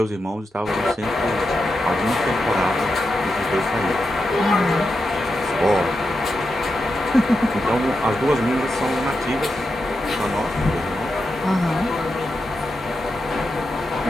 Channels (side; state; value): both; normal; correlation 0.87